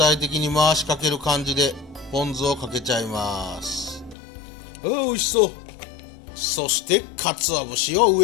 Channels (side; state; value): right; drops out; at 4.2 s